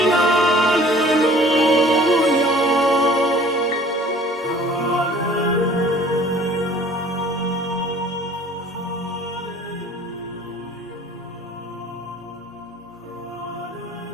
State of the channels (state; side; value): normal; both; correlation 0.50